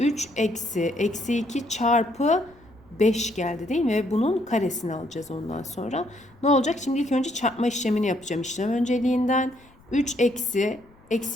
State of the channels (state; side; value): noise; left; rumble, 28 dB below the sound